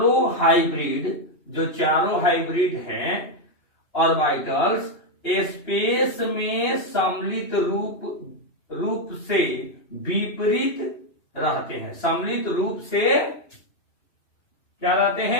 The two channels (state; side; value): late; right; 2.9 ms